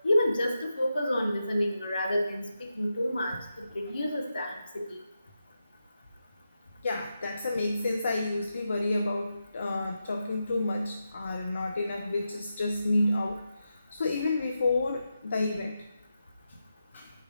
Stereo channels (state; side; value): inverted; both; correlation -0.88